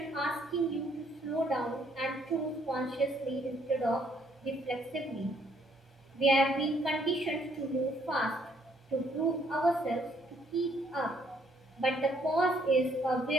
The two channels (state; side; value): normal; both; correlation 0.67